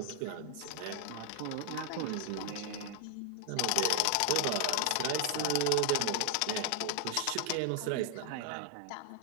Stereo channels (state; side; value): different; both; correlation 0.00